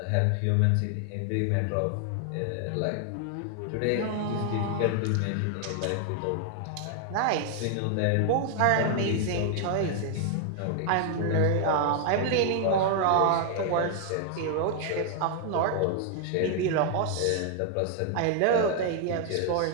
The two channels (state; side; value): different; both; correlation 0.00